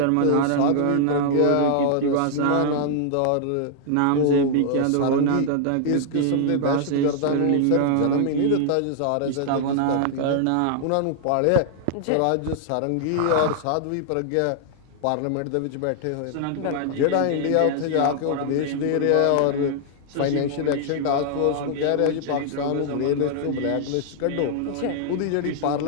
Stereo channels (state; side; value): different; both; correlation -0.01